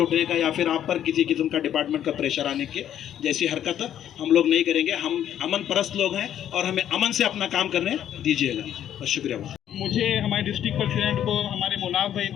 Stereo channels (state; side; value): quieter; right; 10.6 dB